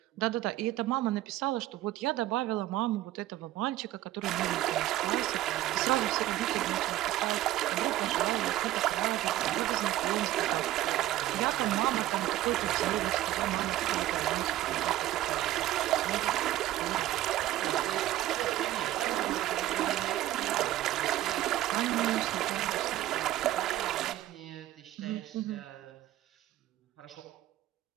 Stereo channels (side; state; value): left; quieter; 14.6 dB